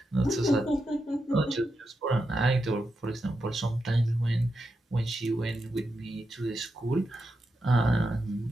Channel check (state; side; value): normal; both; correlation 0.87